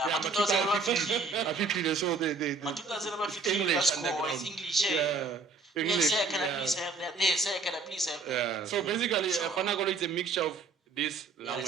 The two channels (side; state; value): left; quieter; 4.1 dB